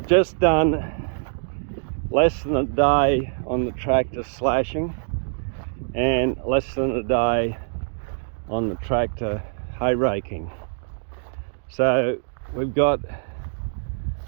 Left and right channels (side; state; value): left; silent; digital silence